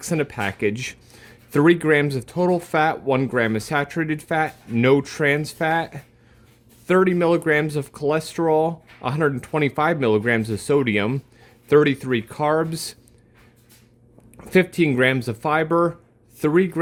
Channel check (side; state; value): both; identical; correlation 1.00